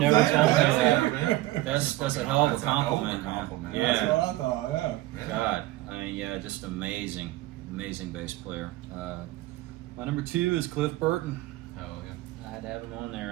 thank told me you. that. That's a hell of a compliment, man. compliment. That's Yeah. what I thought, yeah. God, I mean, yeah, just amazing bass player. My number 2 is Cliff Burton. Oh, yeah. I had to have him on there.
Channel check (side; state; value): left; quieter; 17.2 dB